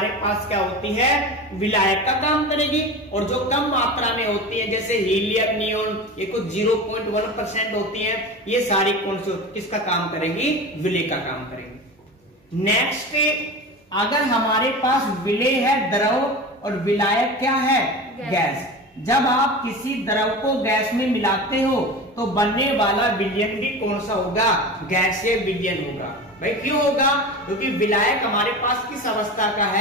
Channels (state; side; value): normal; both; correlation 0.30